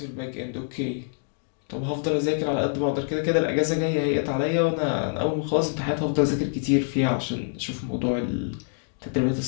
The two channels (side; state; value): right; silent; digital silence